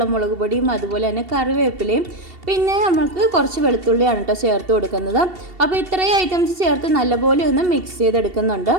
മുളക് പൊടിയും അതുപോലെ തന്നെ കറിവേപ്പിലയും പിന്നെ നമുക്ക് കുറച്ച് വെളുത്തുള്ളിയാണ് കേട്ടോ ചേർത്ത് കൊടുക്കുന്നത്. അപ്പോൾ ഇത്രയും ഐറ്റംസ് ചേർത്ത് നല്ലപോലെ ഒന്ന് മിക്സ് ചെയ്തെടുക്കുന്നുണ്ട്.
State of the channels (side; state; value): left; late; 2.7 ms